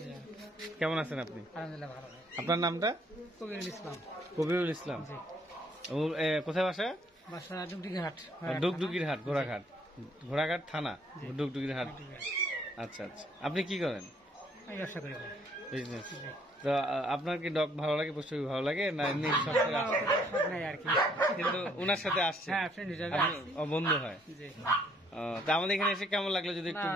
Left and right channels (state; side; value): normal; both; correlation 0.65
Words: কেমন আছেন আপনি? আলহামদুলিল্লাহ ভালো। আপনার নামটা? কবিরুল ইসলাম। কবিরুল ইসলাম। কোথায় বাসা? বাসা ডুগডুগির হাট। ডুগডুগির হাট, ঘোড়াঘাট, ঘোড়াঘাট থানা, ডুগডুগির হাট। আচ্ছা আচ্ছা, আপনি কি করেন? আমি ব্যবসা করি। বিজনেস। তো আপনার কি ডগ ভালো লাগে, পশু ভালো লাগে না এমনি সব নাই আর কি, কিন্তু ওনার সাথে আসছে? হ্যাঁ, ফ্রেন্ড হিসেবে বন্ধু হয়। জি। তা আমাদের এখানে এসে কেমন লাগলো যদি একটু